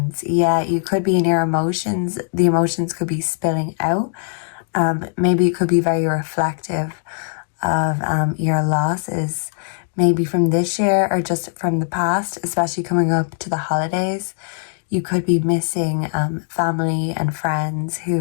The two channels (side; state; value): right; silent; digital silence